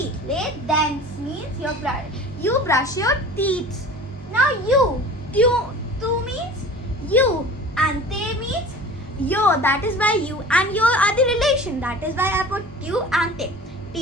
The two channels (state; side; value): normal; both; correlation 0.40